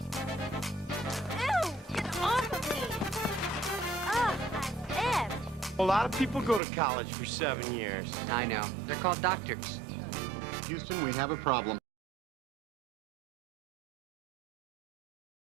Ew! Get off of me! Ugh, I'm ill. A lot of people go to college for 7 years. I know. They're called doctors. Houston, we have a problem.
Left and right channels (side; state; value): left; drops out; at 6.6 s